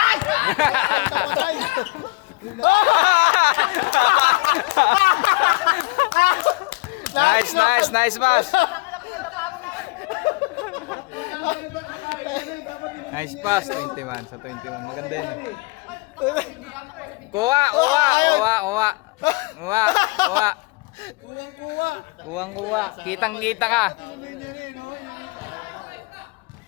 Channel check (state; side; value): quieter; right; 25.5 dB